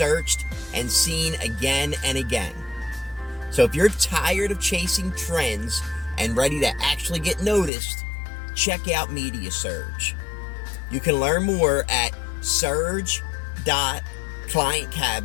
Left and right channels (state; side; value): drops out; right; at 7.7 s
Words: and seen again and again. So if you're tired of chasing trends and ready to actually get noticed, check out Media Surge. You can learn more at